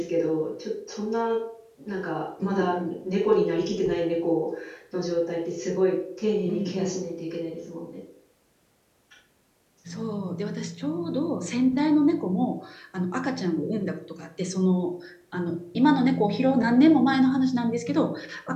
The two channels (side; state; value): both; identical; correlation 1.00